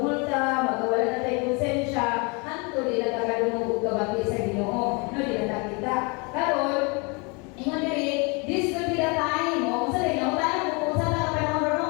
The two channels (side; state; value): right; quieter; 30.6 dB